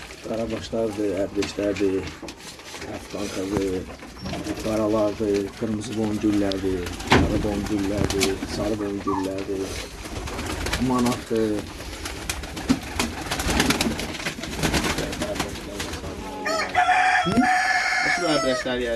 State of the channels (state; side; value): identical; both; correlation 1.00